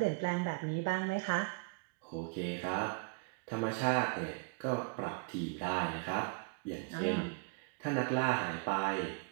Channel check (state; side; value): quieter; left; 30.7 dB